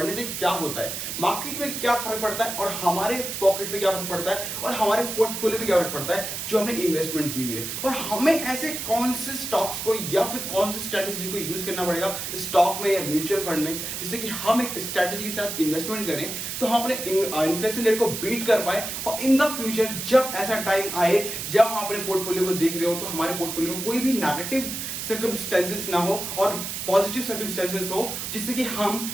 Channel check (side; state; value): right; noise; hiss, 5 dB below the sound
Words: से क्या होता है, मार्केट में क्या फर्क पड़ता है और हमारे पॉकेट पे क्या फर्क पड़ता है और हमारे पोर्टफोलियो पे क्या फर्क पड़ता है जो हमने इन्वेस्टमेंट की हुई है, और हमें ऐसे कौन से स्टॉक्स को या फिर कौन सी स्ट्रैटेजी को यूज करना पड़ेगा स्टॉक में या म्यूचुअल फंड में, जिससे कि हम एक स्ट्रैटेजी के साथ इन्वेस्टमेंट करें तो हम अपने इन्फ्लेशन रेट को बीट कर पाए। और इन द फ्यूचर जब ऐसा टाइम आए जब हम अपने पोर्टफोलियो को देख रहे हो तो हमारे पोर्टफोलियो में कोई भी नेगेटिव सर्कमस्टेंसेस ना हो और पॉजिटिव सर्कमस्टेंसेस हो, जिससे कि हम